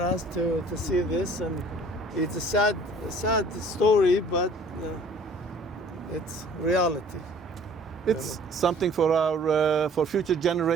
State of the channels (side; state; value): both; normal; correlation 0.52